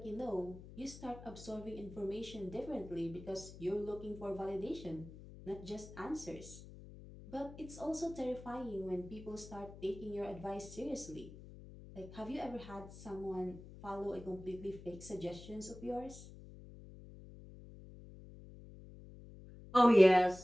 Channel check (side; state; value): left; noise; hum, 16 dB below the sound